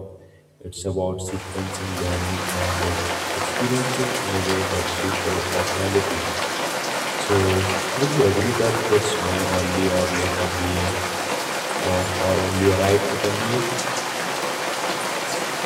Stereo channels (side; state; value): both; identical; correlation 1.00